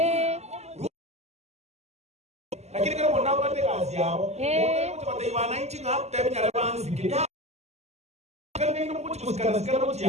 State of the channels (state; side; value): late; left; 0.32 ms